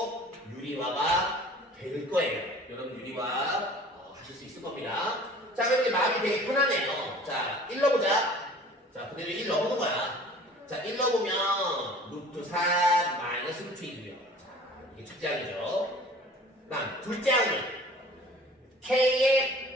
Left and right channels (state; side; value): normal; both; correlation 0.47